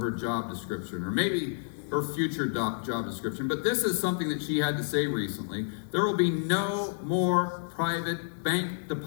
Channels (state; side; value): silent; right; digital silence